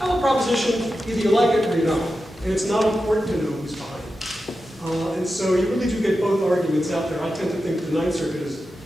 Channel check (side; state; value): both; normal; correlation 0.91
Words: proposition, either you like it or you don't. And it's not important to know who's behind it. And so you really do get both arguments out there. I tend to think the Ninth Circuit